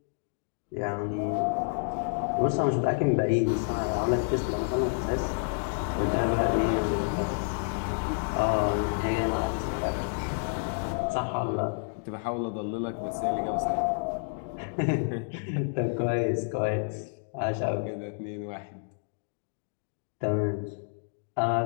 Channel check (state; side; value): silent; right; digital silence